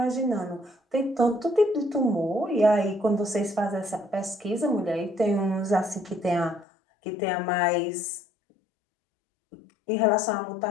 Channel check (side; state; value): right; drops out; at 6.7 s